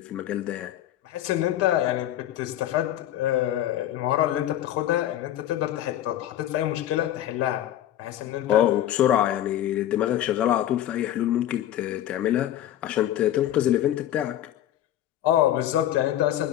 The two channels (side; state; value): right; quieter; 12.2 dB